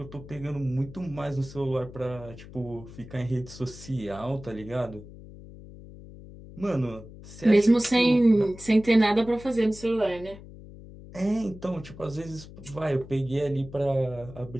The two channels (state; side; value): noise; left; hum, 17 dB below the sound